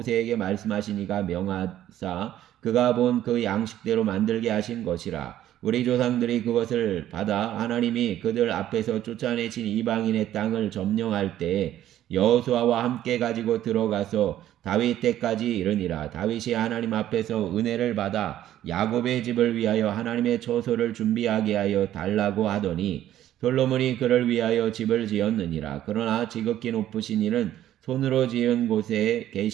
말씀하시니가 명하사 그가 본 그 양식대로 만들게 하신 것이라. 우리 조상들이 그것을 받아 하나님이 그들 앞에서 쫓아내신 이방인의 땅을 점령할 때에 여호수아와 함께 가지고 들어가서 다윗 때까지 이르니라. 다윗이 하나님 앞에서 은혜를 받아 야곱의 집을 위하여 하나님의 처소를 준비하게 하여 달라고 하더니 솔로몬이 그를 위하여 집을 지었느니라. 그러나 지극히 높으신 이는 손으로 지은 곳에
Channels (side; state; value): left; quieter; 12.4 dB